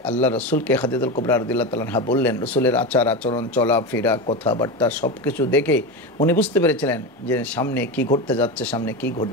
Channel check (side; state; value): both; normal; correlation 0.20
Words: আল্লাহ রসুলকে খাদিজাতুল কুবরা রাদিয়াল্লাহু তাআলা আনহা বললেন, রসুলের আচার আচরণ চলাফেরা কথাবার্তা সব কিছু দেখে উনি বুঝতে পেরেছিলেন যে সামনে কি ঘটতে যাচ্ছে, সামনে কি